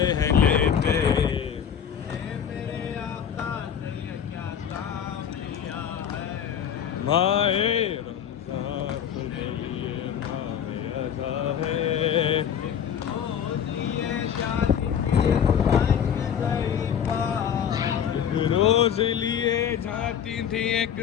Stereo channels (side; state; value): right; quieter; 8.6 dB